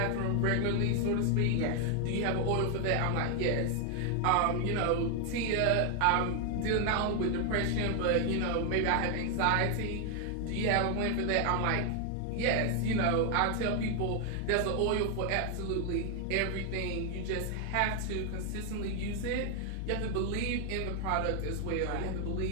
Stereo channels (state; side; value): different; both; correlation 0.00